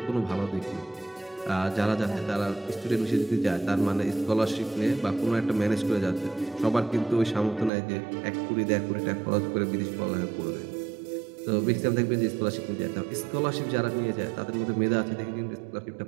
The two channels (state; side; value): drops out; left; at 7.7 s